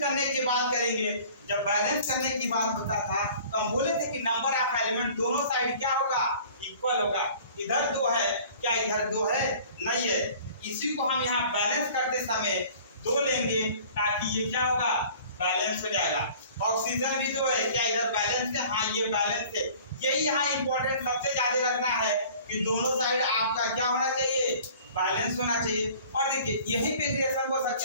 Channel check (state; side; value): inverted; both; correlation -0.48